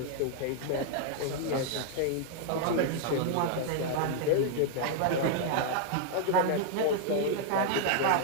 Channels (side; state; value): both; different; correlation -0.01